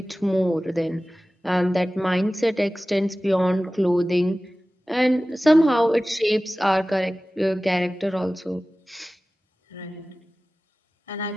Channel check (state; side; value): normal; both; correlation 0.97